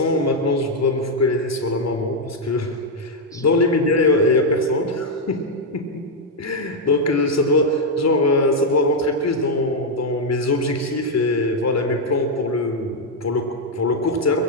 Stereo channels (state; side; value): normal; both; correlation 0.00